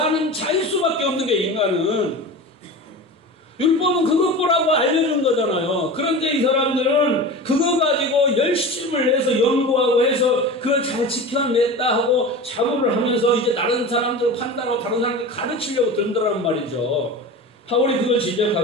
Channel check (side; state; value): both; normal; correlation 0.31